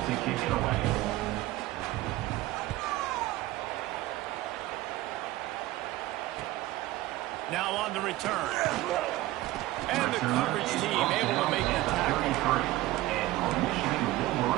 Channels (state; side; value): quieter; left; 17.2 dB